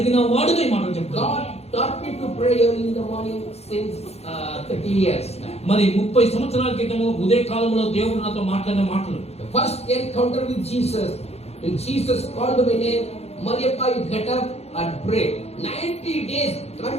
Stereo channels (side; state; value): right; late; 0.30 ms